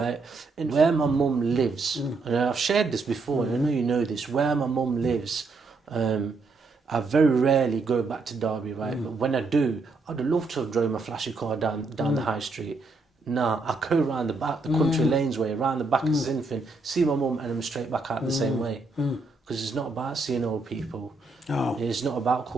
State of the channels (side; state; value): left; quieter; 3.7 dB